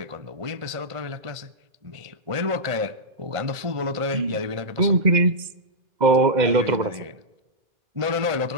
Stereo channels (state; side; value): late; left; 2.1 ms